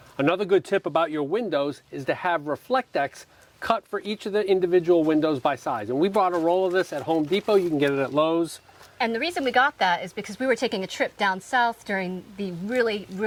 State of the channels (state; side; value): identical; both; correlation 1.00